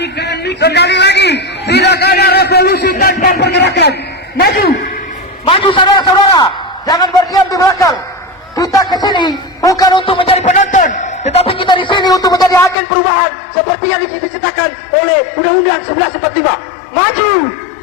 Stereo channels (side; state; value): right; drops out; at 12.8 s